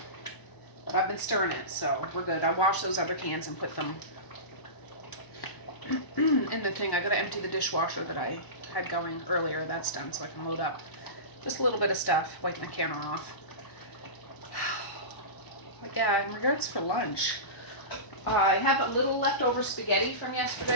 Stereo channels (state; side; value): late; right; 1.0 ms